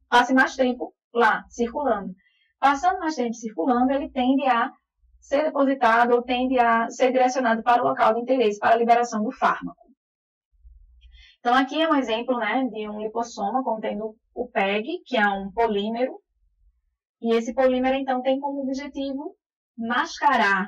mais tempo lá, circulando. Passando mais tempo circulando, ele tende a ser depositado ou tende a ser direcionado para o local de interesse, para a liberação do fármaco. Então, aqui é um exemplo de um lipossoma contendo o PEG, que é um polímero. E esse polímero, então, tem como objetivo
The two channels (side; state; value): both; identical; correlation 1.00